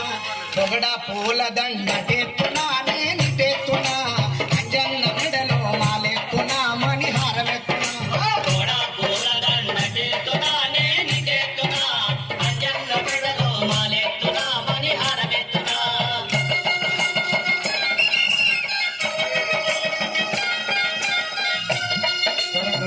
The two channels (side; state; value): both; identical; correlation 1.00